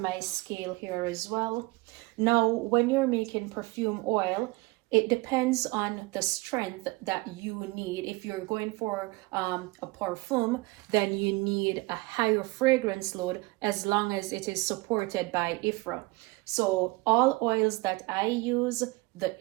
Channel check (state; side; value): quieter; left; 24.0 dB